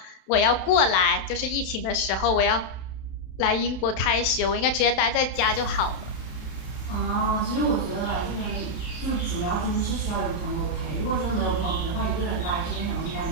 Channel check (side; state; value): right; late; 32 ms